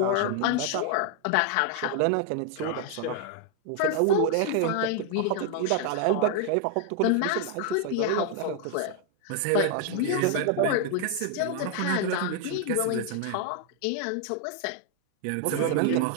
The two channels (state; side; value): different; both; correlation 0.00